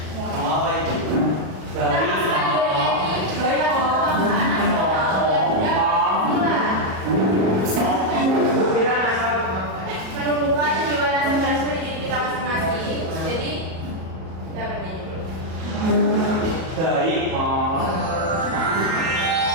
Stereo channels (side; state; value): left; late; 37 ms